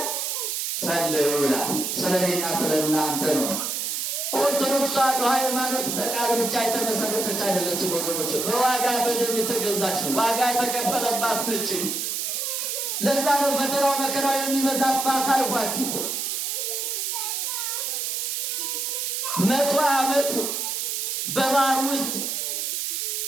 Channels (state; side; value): noise; right; hiss, 1 dB below the sound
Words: ጸልዩ ይላል። ስለኔና ስለእናንተ ነው። ኦርቶዶክስ ተዋሕዶ ሃይማኖት በቃል ብቻ የተመሰረተች አይደለችም ወገኖች፣ በዋጋ በደም የተገዛች ነው። ዋጋ የተከፈለባት ነች። ለዛ ነው ፈተናው መከራው የሚበዛባት አልኳችሁ። 100 ዓመት በባህር ውስጥ